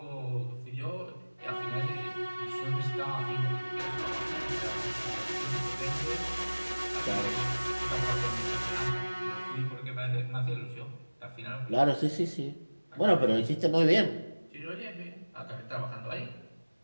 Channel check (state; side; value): inverted; both; correlation -1.00